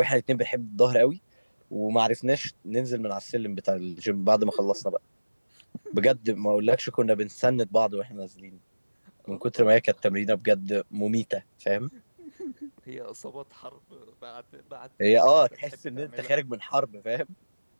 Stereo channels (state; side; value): inverted; both; correlation -1.00